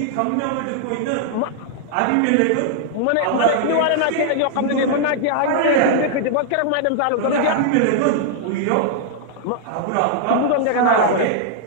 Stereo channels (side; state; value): both; different; correlation -0.01